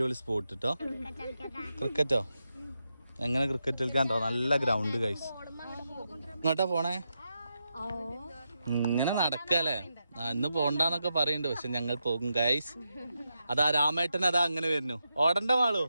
സ്പോട്ട് കേട്ടോ. ക്രിക്കറ്റോ? എങ്ങനെ ക്രിക്കറ്റ് കളിക്കാണ്ടോ? നല്ല ഗ്രൗണ്ട് ഗൈസ്. ഇങ്ങോട്ടാ പോണേ? ഇങ്ങനെ നടക്കല്ലേ? ഇന്ന് പോണ്ടെന്നൊക്കെ പറയുന്നുണ്ട്, പക്ഷെ ഞങ്ങൾ പോകും ഗൈസ്. അതാ രാമേട്ടൻ അതാ അങ്ങനെ വരുന്നു. ഓടണ്ട മാളൂ.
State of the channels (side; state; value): both; inverted; correlation -0.86